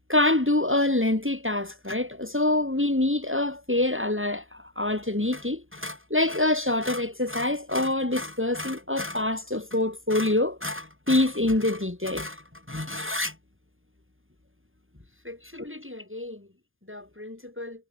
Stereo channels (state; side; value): late; left; 0.59 ms